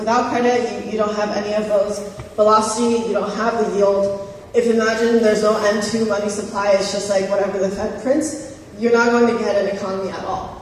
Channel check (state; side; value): identical; both; correlation 1.00